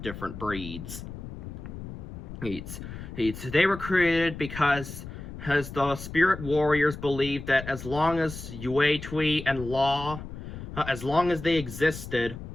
breeds. They were created because the spirit warriors believed that as long as Yue Tui and Law, as long as they existed,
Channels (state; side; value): noise; left; rumble, 10 dB below the sound